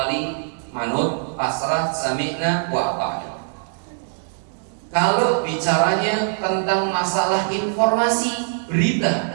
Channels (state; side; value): silent; left; digital silence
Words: manut, pasrah, sami'na wa ata'na. Kalau bicaranya tentang masalah informasi, berita,